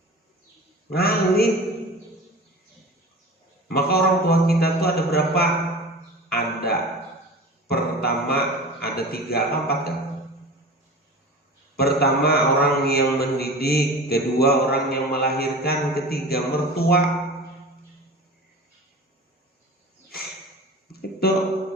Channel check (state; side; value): normal; both; correlation 0.35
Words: ngalih. Maka orang tua kita tuh ada berapa? Ada pertama ada 3 apa 4 kan? Pertama orang yang mendidik, kedua orang yang melahirkan, ketiga mertua. Itu.